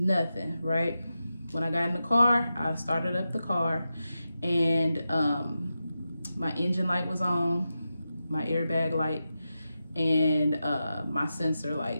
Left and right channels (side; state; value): both; inverted; correlation -0.90